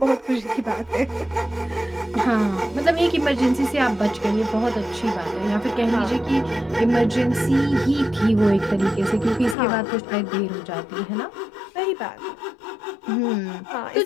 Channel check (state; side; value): drops out; right; at 9.6 s